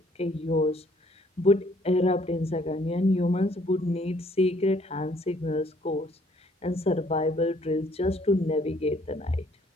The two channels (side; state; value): both; normal; correlation 0.63